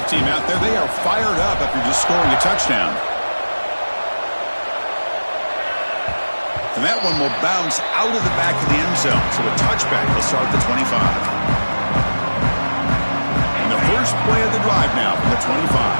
team out there, they are fired up after just scoring a touchdown. And that one will bounce out of the back of the end zone. So a touchback will start the 25. First play of the drive now from the 25.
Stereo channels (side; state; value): both; inverted; correlation -1.00